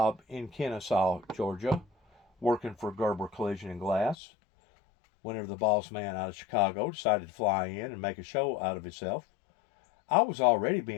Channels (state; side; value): drops out; right; at 4.2 s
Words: in Kennesaw, Georgia, working for Gerber Collision and Glass, whenever the boss man out of Chicago decided to fly in and make a show out of himself, I was already